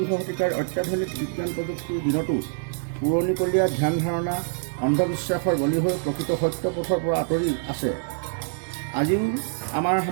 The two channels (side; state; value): left; silent; digital silence